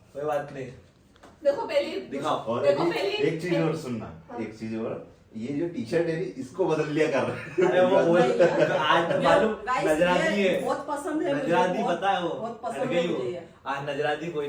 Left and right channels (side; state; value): both; identical; correlation 1.00